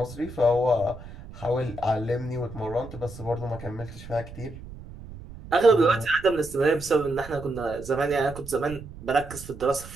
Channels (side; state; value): right; noise; rumble, 14 dB below the sound